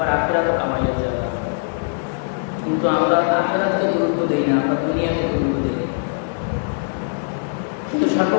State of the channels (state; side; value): silent; right; digital silence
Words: আখিরাতও কামাইয়ের জায়গা। কিন্তু আমরা আখিরাতকে গুরুত্ব দিই না, আমরা দুনিয়াকে গুরুত্ব দিই। কিন্তু